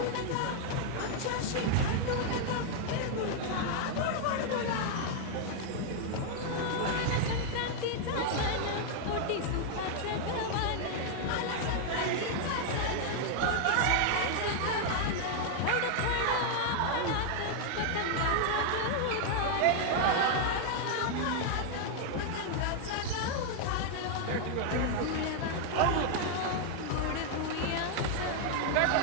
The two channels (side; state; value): both; different; correlation 0.00